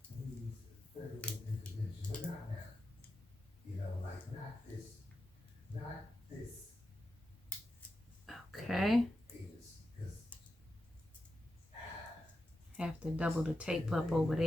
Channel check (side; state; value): both; normal; correlation 0.89